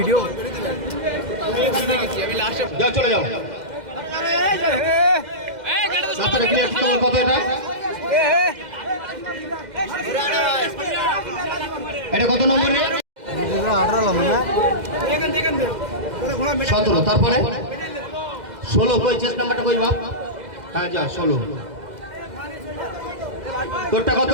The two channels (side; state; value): left; late; 2.0 ms